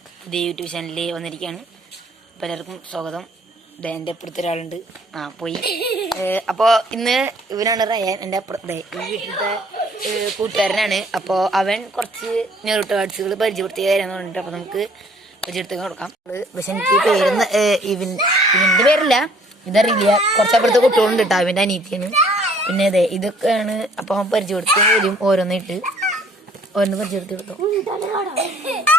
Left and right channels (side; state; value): both; normal; correlation 0.59